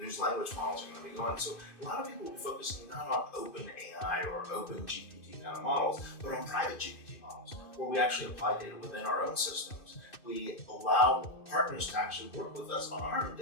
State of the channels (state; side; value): late; right; 2.6 ms